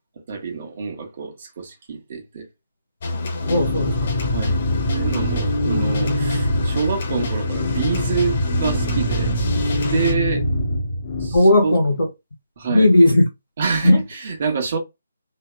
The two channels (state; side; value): inverted; both; correlation -0.78